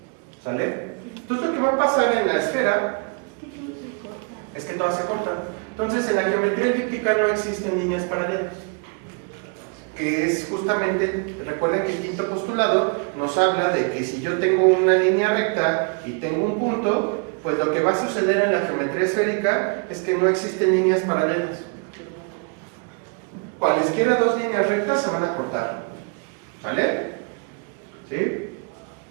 ¿Sale? Entonces, lo que va a pasar en la esfera es que todas se cortan. Entonces, en la geometría elíptica no existen líneas paralelas. Que es justamente, recuerden que el quinto postulado nos habla de que si yo tengo una línea recta y tengo un punto, pues lo que va a suceder en la geometría esférica es que no existen líneas paralelas. Cualesquiera dos líneas rectas se van a cortar. ¿Sale? ¿Sí?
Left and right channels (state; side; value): quieter; left; 37.0 dB